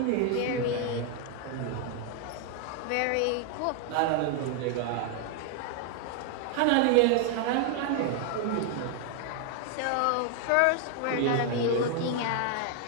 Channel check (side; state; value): both; different; correlation 0.00